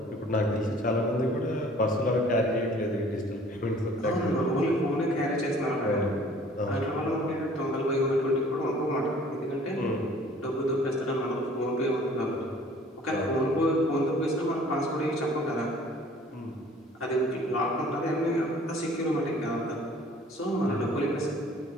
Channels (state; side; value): normal; both; correlation 0.52